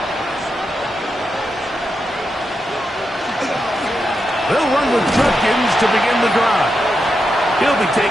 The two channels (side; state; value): both; normal; correlation 0.86